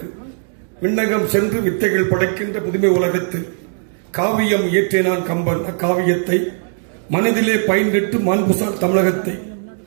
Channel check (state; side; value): silent; left; digital silence